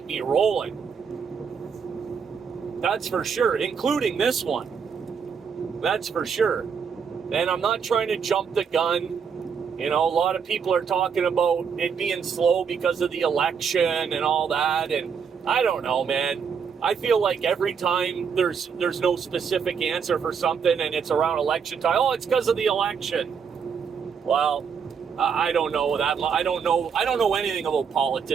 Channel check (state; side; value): quieter; left; 6.6 dB